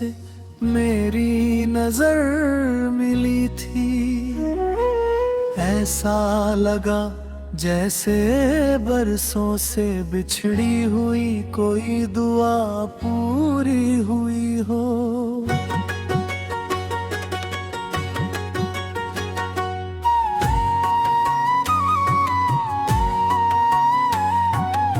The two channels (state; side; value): identical; both; correlation 1.00